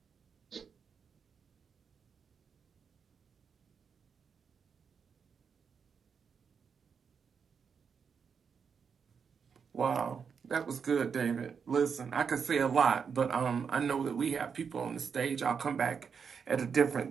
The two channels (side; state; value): left; quieter; 6.4 dB